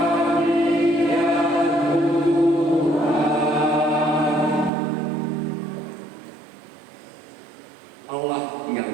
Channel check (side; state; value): left; drops out; at 4.7 s